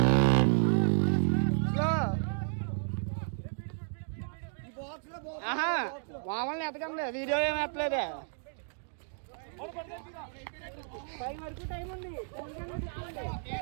మామూలు ఎతకండి, వీడియో ఏమి ఎత్తలేదే. టైం ఉంది,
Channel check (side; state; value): left; silent; digital silence